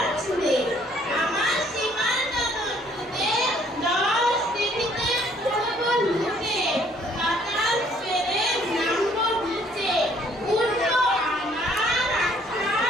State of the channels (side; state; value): both; normal; correlation 0.62